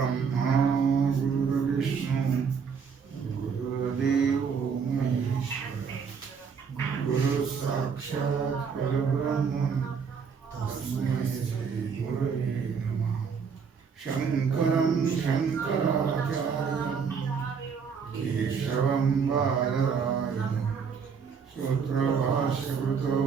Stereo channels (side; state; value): left; quieter; 6.1 dB